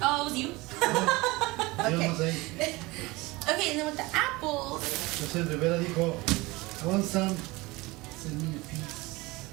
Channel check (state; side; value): quieter; left; 22.3 dB